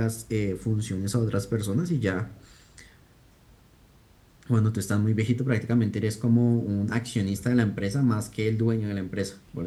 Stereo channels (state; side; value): identical; both; correlation 1.00